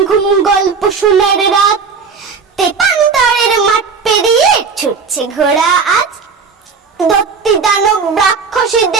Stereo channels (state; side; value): quieter; left; 5.3 dB